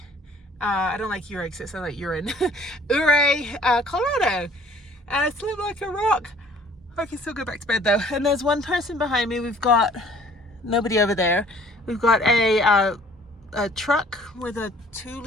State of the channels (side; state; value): both; normal; correlation 0.55